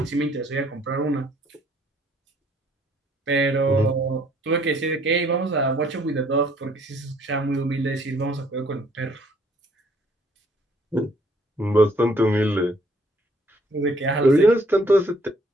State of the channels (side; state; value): both; normal; correlation 0.63